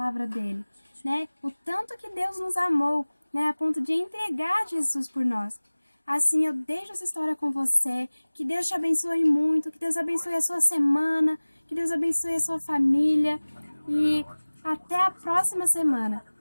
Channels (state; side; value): inverted; both; correlation -1.00